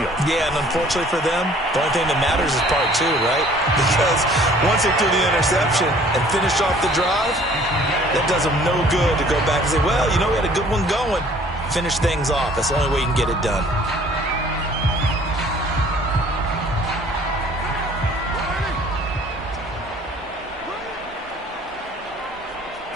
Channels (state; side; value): normal; both; correlation 0.54